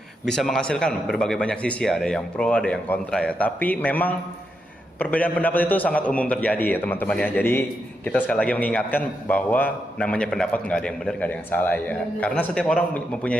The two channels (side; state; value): both; normal; correlation 0.83